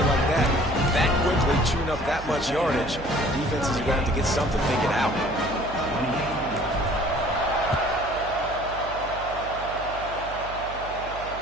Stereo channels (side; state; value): right; noise; hum, 13 dB below the sound